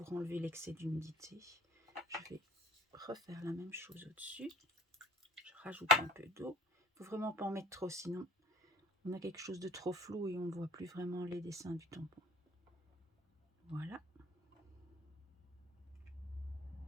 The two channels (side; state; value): both; normal; correlation 0.49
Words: enlever l'excès d'humidité. Je vais refaire la même chose au-dessus. Je rajoute un peu d'eau. Il ne faut vraiment pas en mettre trop, sinon on a quelque chose de trop flou et on ne voit plus vraiment les dessins du tampon. Voilà.